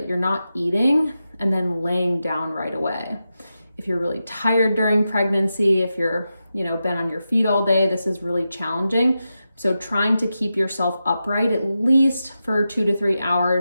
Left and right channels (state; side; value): inverted; both; correlation -0.90